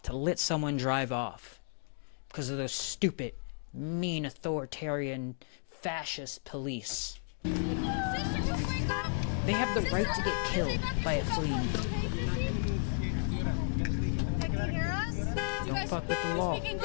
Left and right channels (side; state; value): right; silent; digital silence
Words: to let someone drive off because of those stupid, mean, authoritarian, fascist police. They have the right to get killed by a fleeing vehicle. Don't fuck with the law. Look